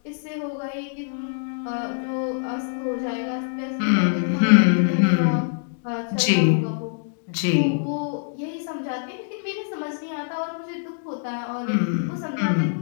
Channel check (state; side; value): silent; right; digital silence